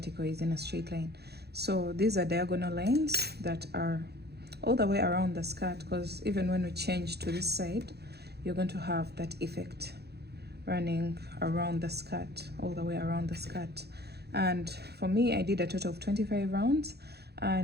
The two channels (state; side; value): late; left; 0.48 ms